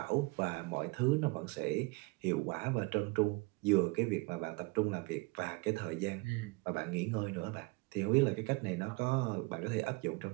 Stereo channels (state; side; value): quieter; left; 26.2 dB